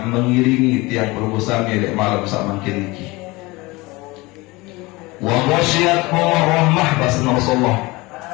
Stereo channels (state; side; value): quieter; right; 22.8 dB